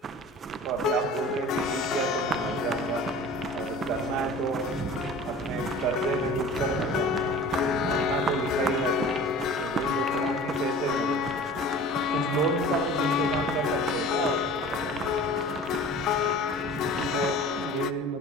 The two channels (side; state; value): both; normal; correlation 0.41